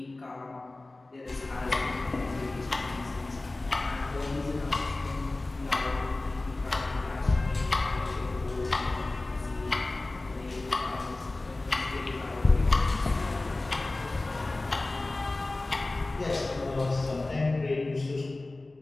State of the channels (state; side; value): quieter; right; 3.0 dB